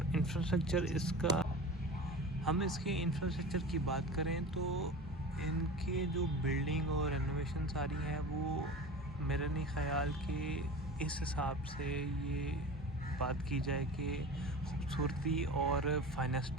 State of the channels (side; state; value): both; normal; correlation 0.33